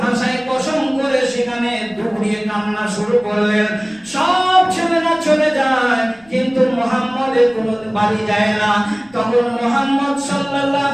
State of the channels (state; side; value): noise; left; rumble, 29 dB below the sound